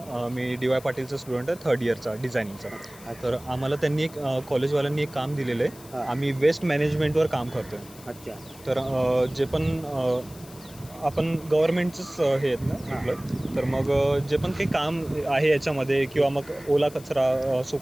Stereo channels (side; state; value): left; noise; hiss, 20 dB below the sound